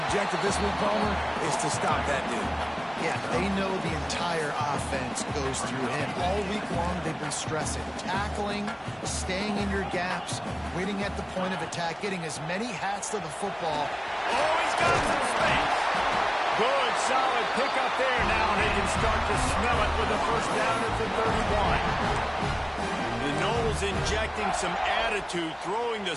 this week, Palmer, is to stop that dude. Yeah, they know the entire offense goes through him. All week long, they've been stressing. Tackling, staying in your gaps, waiting at the point of attack, getting as many hats to the football. Oh, he's got some space. Good, solid pick up there now, and they can start to smell it with a first down at the 31. The Noles injecting some attitude, throwing the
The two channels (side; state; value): both; identical; correlation 1.00